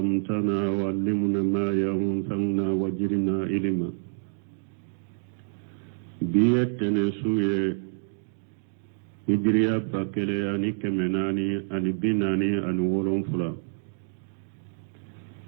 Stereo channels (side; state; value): left; silent; digital silence